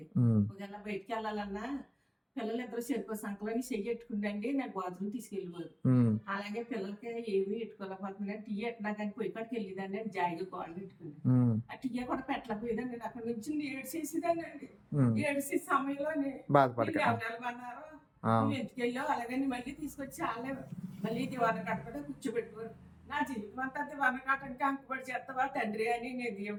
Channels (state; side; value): identical; both; correlation 1.00